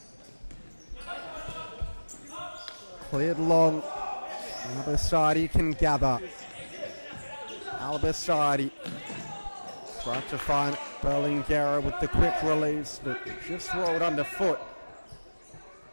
Cleared long. Albasadi can gather. Albasadi trying to find Berlingeri with the quick release, but just rolled underfoot.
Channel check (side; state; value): both; inverted; correlation -1.00